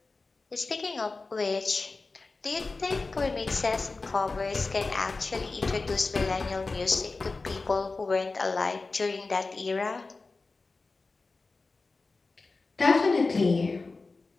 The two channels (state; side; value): quieter; right; 3.8 dB